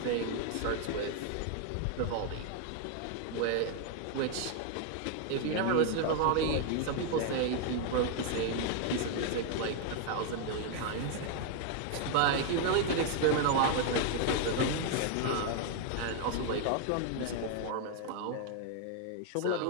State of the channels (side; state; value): both; different; correlation 0.00